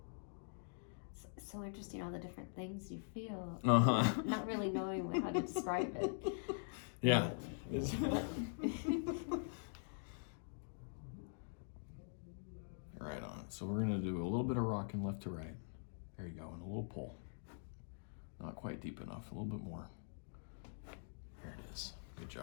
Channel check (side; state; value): right; silent; digital silence